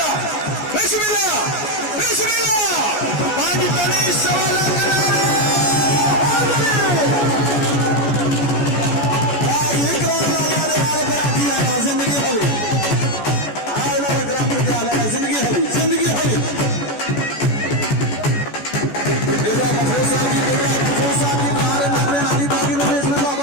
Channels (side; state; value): right; late; 14 ms